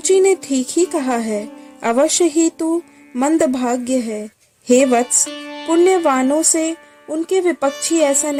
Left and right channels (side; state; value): both; identical; correlation 1.00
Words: ने ठीक ही कहा है, अवश्य ही तू मंदभाग्य है। हे वत्स, पुण्यवानों से उनके विपक्षी ऐसा